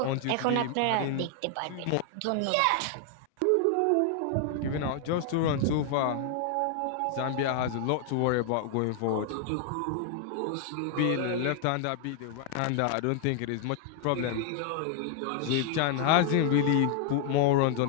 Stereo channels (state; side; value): different; both; correlation 0.00